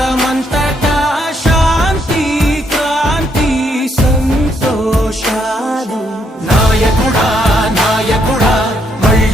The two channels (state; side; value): normal; both; correlation 0.74